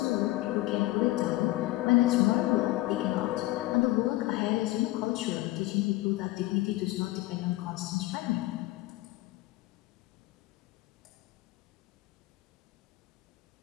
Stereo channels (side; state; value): right; quieter; 18.2 dB